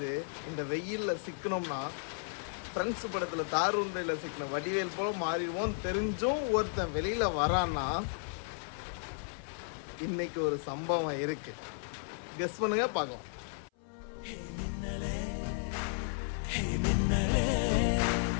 இந்த வெயிலில் சிக்கணும்னா ஃப்ரெண்ட்ஸ் படத்தில் தாருண்டையில் சிக்கின வடிவேல் போல மாறிடுவோம் தெரிஞ்சும் ஒருத்தன் வெளியில் வரான்னா இன்னைக்கு ஒரு சம்பவம் இருக்கு. கெஸ் பண்ணுங்க பார்க்கலாம்.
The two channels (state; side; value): silent; right; 55 dB below the other